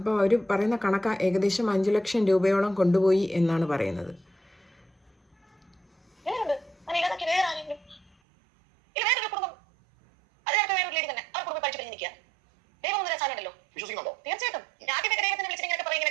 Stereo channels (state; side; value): drops out; left; at 8.2 s